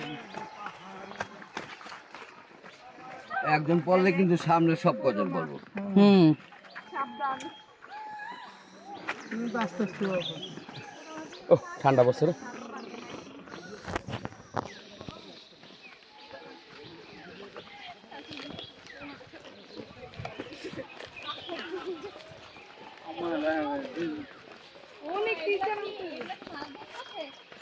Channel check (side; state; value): both; identical; correlation 1.00